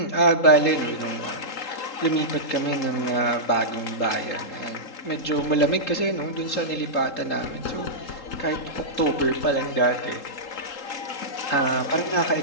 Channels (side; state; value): right; late; 3.8 ms